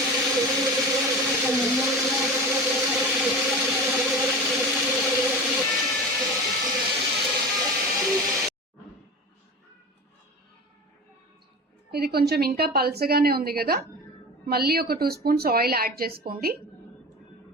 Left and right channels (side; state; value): both; normal; correlation 0.31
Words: ఇది కొంచెం ఇంకా పల్చగానే ఉంది కదా, మళ్ళీ ఒక 2 స్పూన్స్ ఆయిల్ యాడ్ చేసుకోండి.